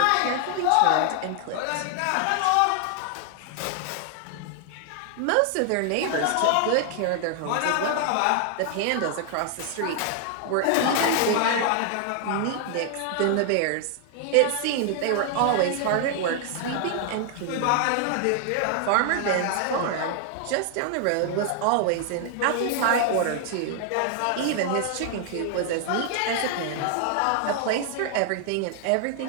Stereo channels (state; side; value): different; both; correlation 0.00